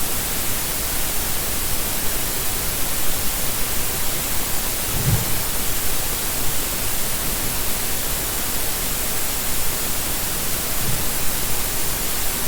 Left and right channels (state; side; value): identical; both; correlation 1.00